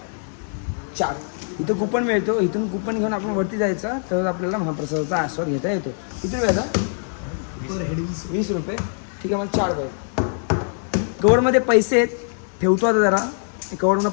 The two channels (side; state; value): right; silent; 64 dB below the other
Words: 4. इथं कुपन मिळतो, इथून कुपन घेऊन आपण वरती जायचं तर आपल्याला महाप्रसादाचा आस्वाद घेता येतो. किती वेळा? पर हेड 20 रुपये. ठीक आहे, मला 4 पाहिजे. कवरमध्ये पैसे आहेत, ठेवतो आता जरा. कवरमध्ये